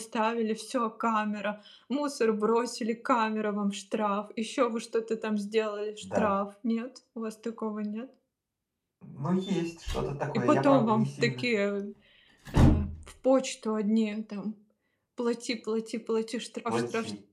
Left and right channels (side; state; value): both; identical; correlation 1.00